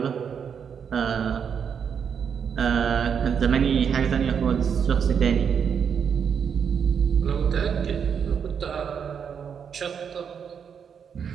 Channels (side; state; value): left; quieter; 7.2 dB